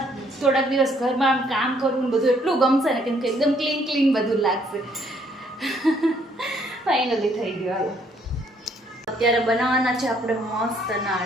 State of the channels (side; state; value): both; normal; correlation 0.67